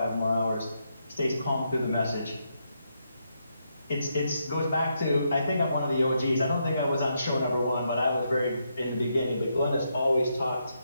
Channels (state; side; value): inverted; both; correlation -0.80